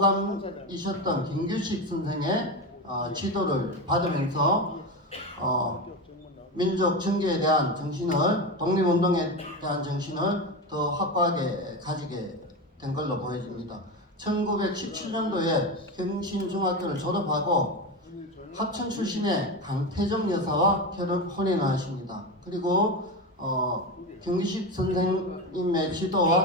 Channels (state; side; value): normal; both; correlation 0.19